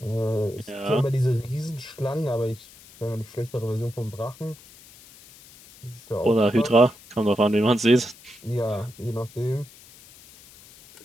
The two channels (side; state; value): left; noise; hiss, 22 dB below the sound